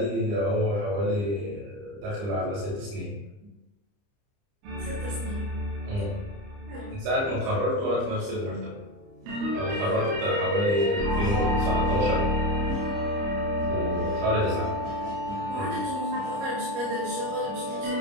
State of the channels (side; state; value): left; late; 30 ms